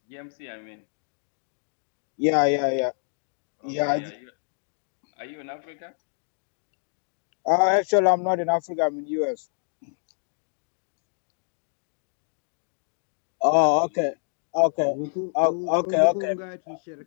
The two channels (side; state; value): right; silent; digital silence